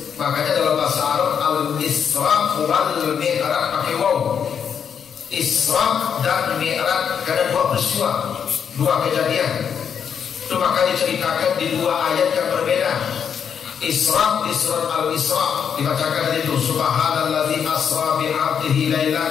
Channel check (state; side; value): quieter; right; 7.5 dB